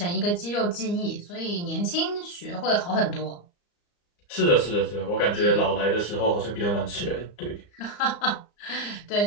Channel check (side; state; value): right; late; 34 ms